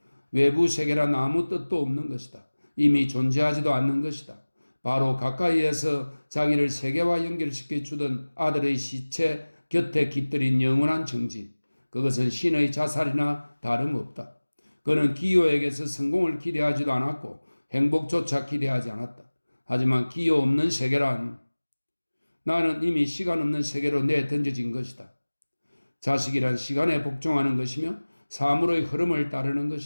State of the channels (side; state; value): both; inverted; correlation -1.00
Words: 외부 세계란 아무 뜻도 없는 것이다. 이미 존재하지도 않는 것이다. 바로 가까이에서 자기를 세계와 연결시켜 주던 아들의 시체 곁에 깃들인 영원한 정지. 그것은 신의 자살이나 다름없다. 그는 기요에게서 성공을 기대하지도 않았고 행복조차 기대하지 않았다. 하지만 기요 없는 세계란 나는 이미 시간 없는 세계로 내던져진 것이다. 자식이란 시간에 복종하는 것이며 사물의 흐름을 따르는